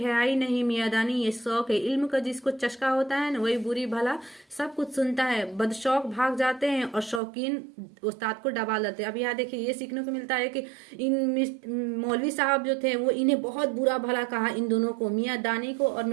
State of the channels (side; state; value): left; drops out; at 7.2 s